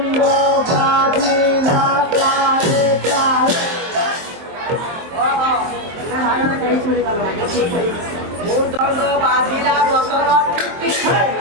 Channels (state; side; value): late; left; 23 ms